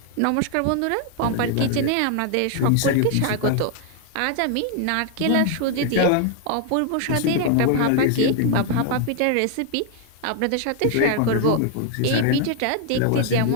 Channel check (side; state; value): both; different; correlation 0.00